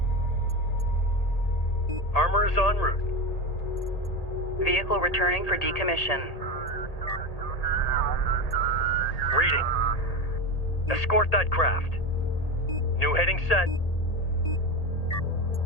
Armor is en route. Vehicle returning for decommission. Reading. Escort that craft. New heading set.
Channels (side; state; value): right; late; 1.8 ms